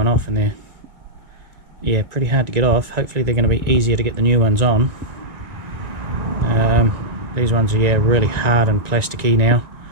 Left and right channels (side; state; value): left; late; 1.9 ms